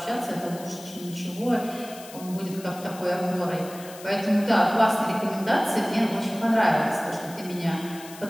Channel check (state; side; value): noise; left; hiss, 17 dB below the sound